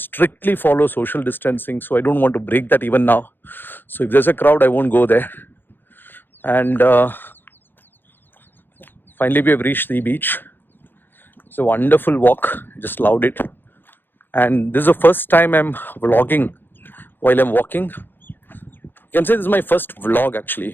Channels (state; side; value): late; right; 0.097 ms